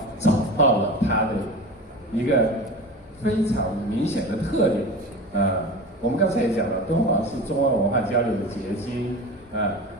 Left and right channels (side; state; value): both; normal; correlation 0.31